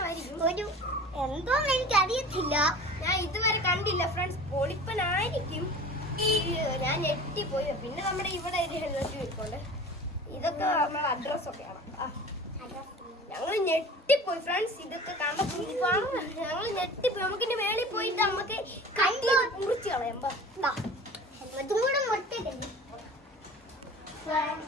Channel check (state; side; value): normal; both; correlation 0.40